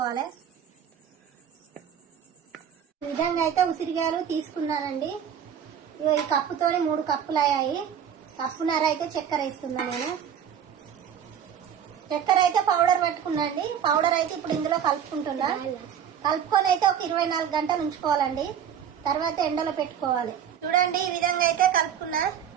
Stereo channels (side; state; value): left; quieter; 8.6 dB